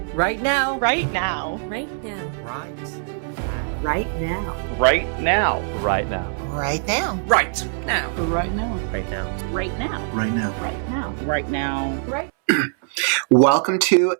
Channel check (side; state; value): left; silent; 64 dB below the other